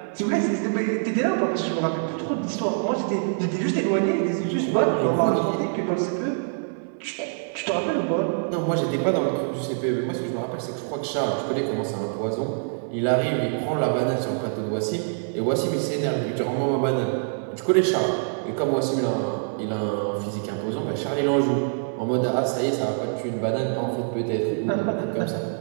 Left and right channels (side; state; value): left; silent; 57 dB below the other